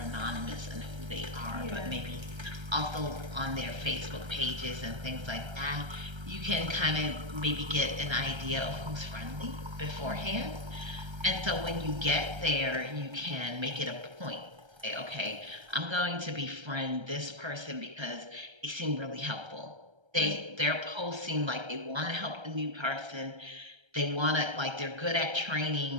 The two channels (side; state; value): left; late; 1.3 ms